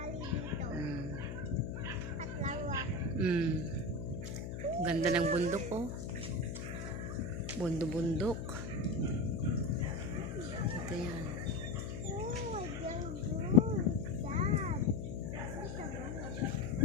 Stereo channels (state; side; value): noise; left; hum, 6 dB below the sound